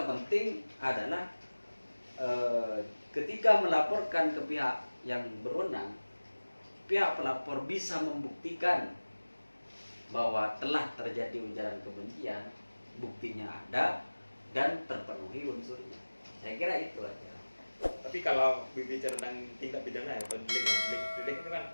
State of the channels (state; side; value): inverted; both; correlation -1.00